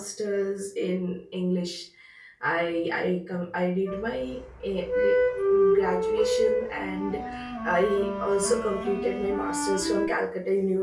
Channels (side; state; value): both; identical; correlation 1.00